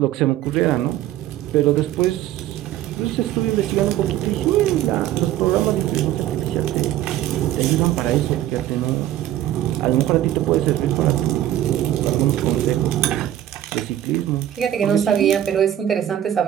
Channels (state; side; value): quieter; left; 12.5 dB